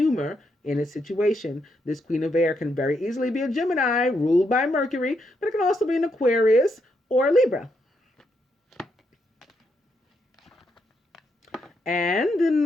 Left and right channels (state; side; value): normal; both; correlation 0.79